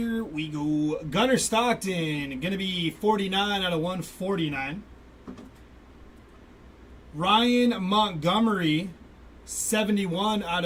we go. Gunnar Stockton, going to be 49 out of 149. Ryan Montgomery, 71 out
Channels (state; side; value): identical; both; correlation 1.00